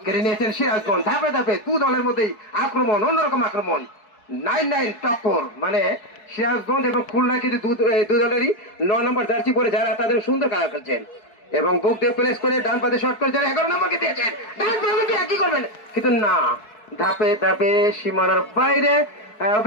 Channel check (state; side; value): late; right; 4.6 ms